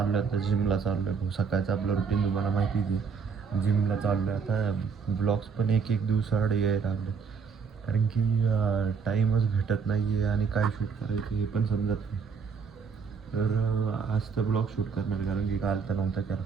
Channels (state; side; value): quieter; left; 5.8 dB